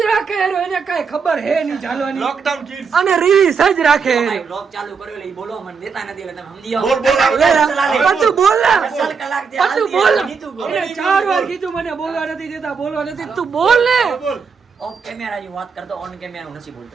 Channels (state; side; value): quieter; left; 5.6 dB